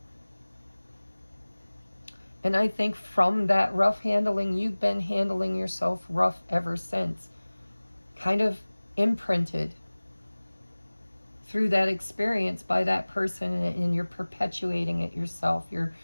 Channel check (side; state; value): both; inverted; correlation -1.00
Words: And I think from that rough handling, you've been handling yourself rough ever since. Kind of imprinted through that experience by that person, and you're perpetuating it yourself. You're